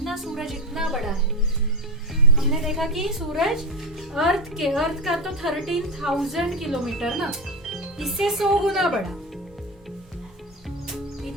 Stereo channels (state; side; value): normal; both; correlation 0.15